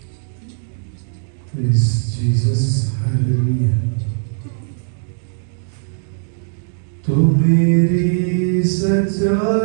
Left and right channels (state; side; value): silent; left; digital silence